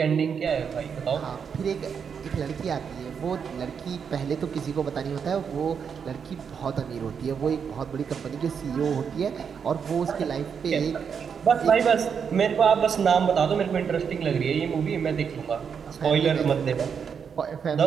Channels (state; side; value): quieter; left; 6.8 dB